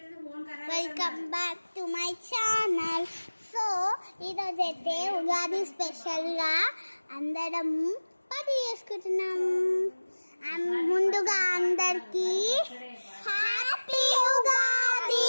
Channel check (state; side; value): inverted; both; correlation -1.00